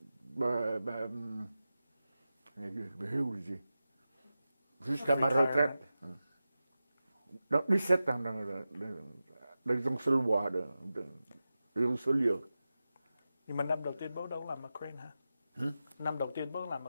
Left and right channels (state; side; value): inverted; both; correlation -0.93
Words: jusqu'à ma retraite. Donc 17 ans dans un seul bois, dans un seul lieu. Nhưng mà năm đầu tiên bố đâu làm ở Crane hả? Năm đầu tiên bố làm ở